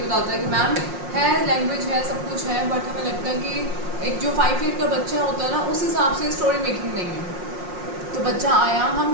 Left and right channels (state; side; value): late; left; 5.6 ms